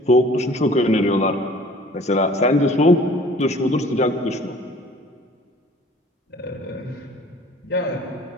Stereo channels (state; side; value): normal; both; correlation 0.50